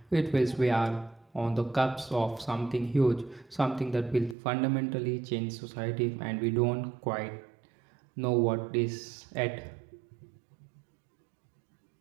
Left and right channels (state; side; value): drops out; left; at 4.4 s